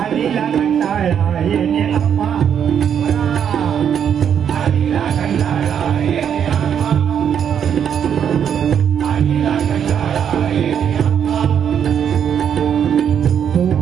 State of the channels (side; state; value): left; quieter; 8.4 dB